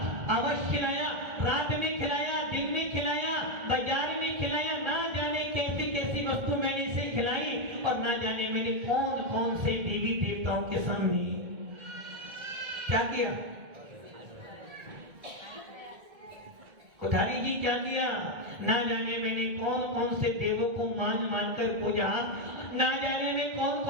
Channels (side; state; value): left; late; 1.8 ms